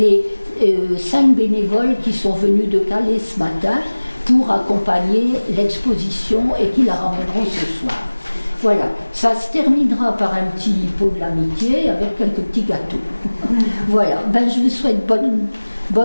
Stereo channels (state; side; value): inverted; both; correlation -1.00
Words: 5 bénévoles qui sont venus de Calais ce matin pour accompagner l'exposition et qui la ramèneront ce soir. Voilà, Ça se terminera par un petit pot de l'amitié avec quelques petits gâteaux. Voilà, ben, je vous souhaite